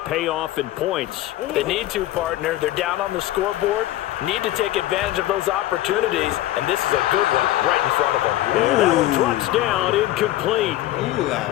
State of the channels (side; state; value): right; quieter; 15.0 dB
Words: pay off in points? They need to, partner. They're down on the scoreboard. Need to take advantage of those opportunities, and this is a good one right in front of them. And that one drops down, incomplete.